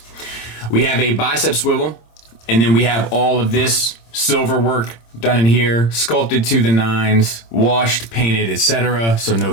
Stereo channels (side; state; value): right; late; 26 ms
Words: We have a bicep swivel, and then we have all of this silver work done in here, sculpted to the nines, washed, painted, etc. So no